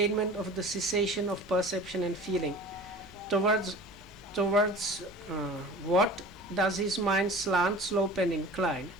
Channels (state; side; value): normal; both; correlation 0.40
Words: of the cessation of perception and feeling, towards what does his mind slant, slope, and incline?